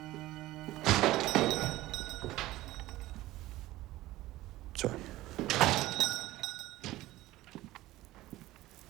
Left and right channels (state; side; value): quieter; left; 17.0 dB